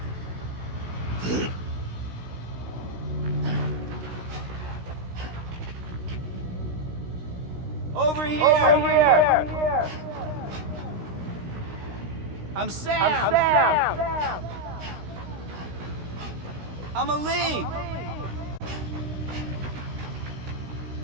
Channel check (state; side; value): late; left; 16 ms